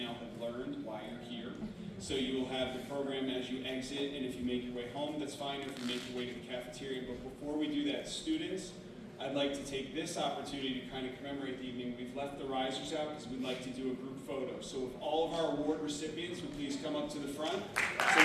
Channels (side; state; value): both; identical; correlation 1.00